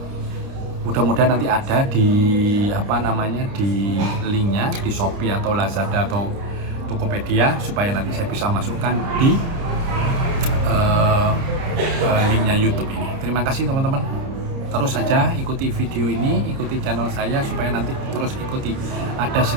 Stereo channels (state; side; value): late; left; 30 ms